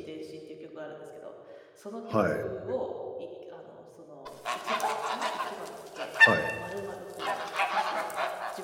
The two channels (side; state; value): both; identical; correlation 1.00